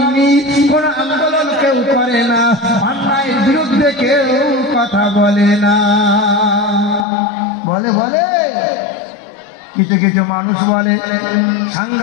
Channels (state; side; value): drops out; right; at 7.1 s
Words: কোন আন্দোলন কেউ করে না, অন্যায়ের বিরুদ্ধে কেউ কথা বলে না। বলে কিছু কিছু মানুষ বলে